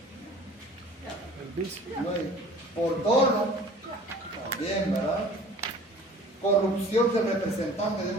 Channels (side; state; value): both; normal; correlation 0.46